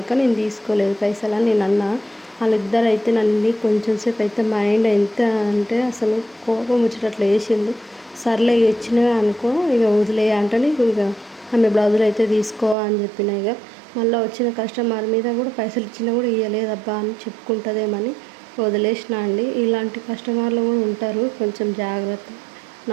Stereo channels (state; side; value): drops out; left; at 12.8 s